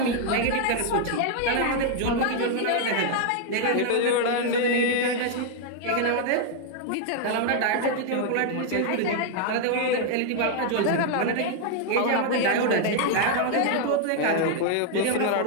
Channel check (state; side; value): different; both; correlation 0.00